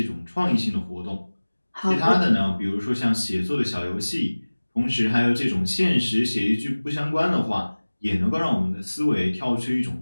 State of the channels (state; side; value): inverted; both; correlation -1.00